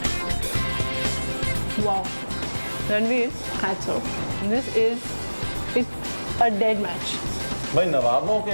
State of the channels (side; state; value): both; inverted; correlation -1.00